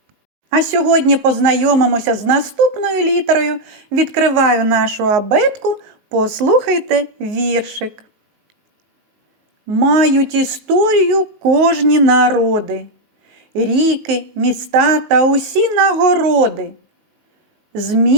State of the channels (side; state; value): left; late; 19 ms